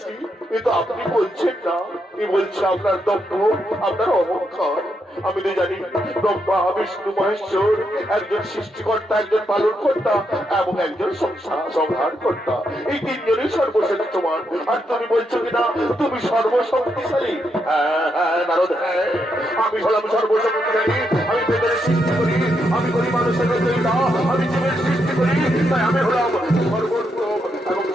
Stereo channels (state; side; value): normal; both; correlation 0.80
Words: এ তো আপনি বলছেন না, এ বলছে আপনার দম্ভ, আপনার অহংকার। আমি তো জানি ব্রহ্মা বিষ্ণু মহেশ্বর একজন সৃষ্টিকর্তা, একজন পালন কর্তা এবং একজন সংহার কর্তা। এই তিনজনই সর্বশ্রেষ্ঠমান। আর তুমি বলছো কিনা তুমি সর্বশক্তিশালী? হ্যাঁ হ্যাঁ নারদ, হ্যাঁ আমি হলাম সর্বশক্তিশালী। আমি বেদের সৃষ্টি করি, আমি করি মানুষের রচয়িতা, আমি জীবের সৃষ্টি করি। তাই আমি হলাম সর্বোত্তম এবং